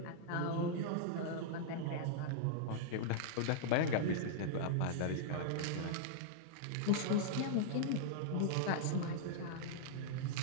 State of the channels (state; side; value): different; both; correlation -0.02